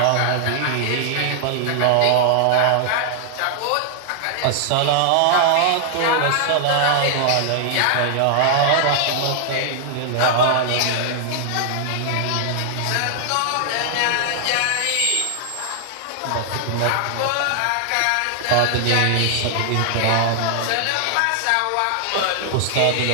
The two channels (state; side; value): different; both; correlation 0.00